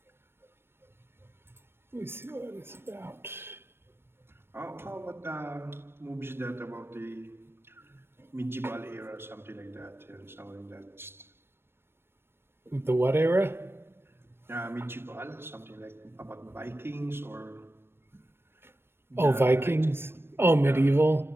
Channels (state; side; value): late; left; 0.12 ms